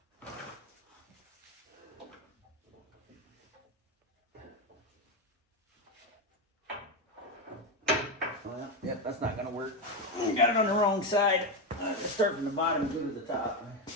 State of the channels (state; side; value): normal; both; correlation 0.11